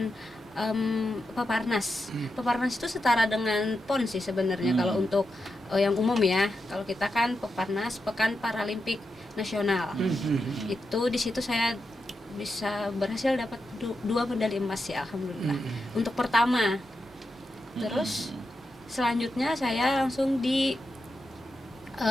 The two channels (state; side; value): normal; both; correlation 0.87